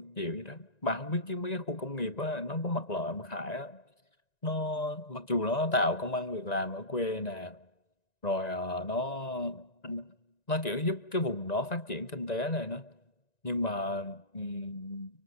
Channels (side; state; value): right; late; 1.9 ms